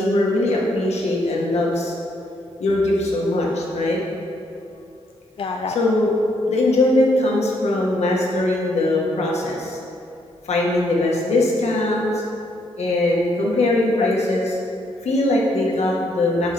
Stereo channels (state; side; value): normal; both; correlation 0.72